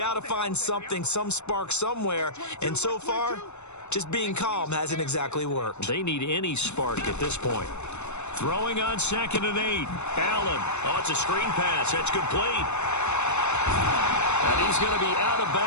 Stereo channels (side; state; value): right; late; 0.82 ms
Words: to find something, some spark somewhere. And so far, just being calm hasn't exactly worked. They need any spark at this point. Throwing on 2nd and 8. Allen. Oh, it's a screen pass. That's complete. And he's going to be out of